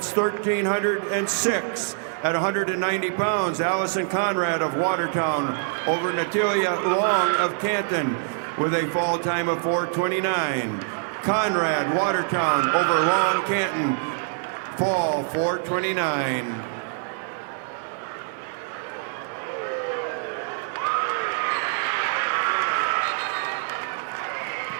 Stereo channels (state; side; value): silent; left; digital silence